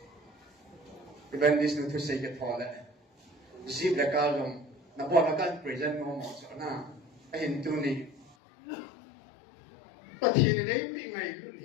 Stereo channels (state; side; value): drops out; right; at 8.3 s